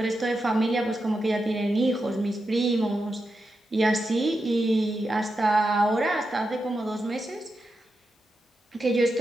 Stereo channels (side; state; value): both; normal; correlation 0.88